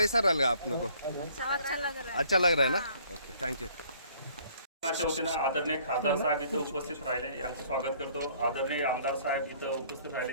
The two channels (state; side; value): inverted; both; correlation -0.59